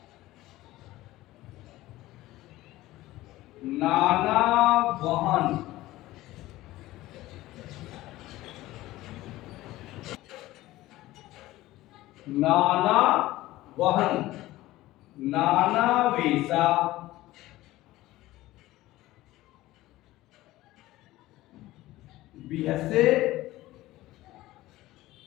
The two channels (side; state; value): right; quieter; 17.0 dB